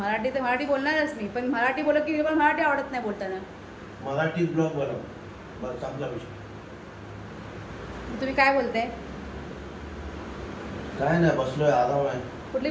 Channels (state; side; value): identical; both; correlation 1.00